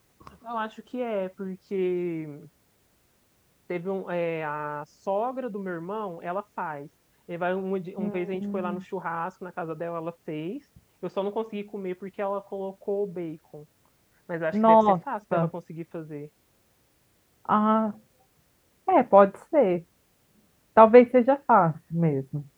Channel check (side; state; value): both; identical; correlation 1.00